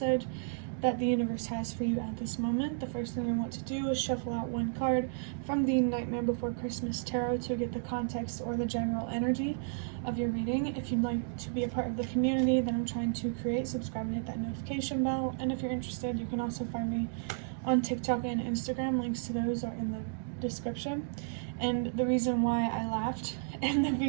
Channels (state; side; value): silent; left; digital silence